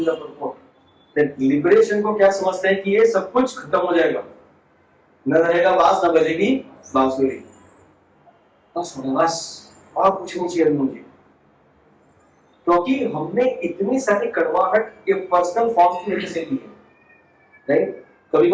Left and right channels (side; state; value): both; identical; correlation 1.00